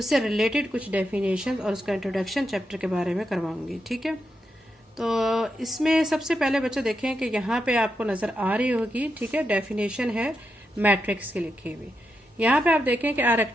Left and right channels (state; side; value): normal; both; correlation 0.85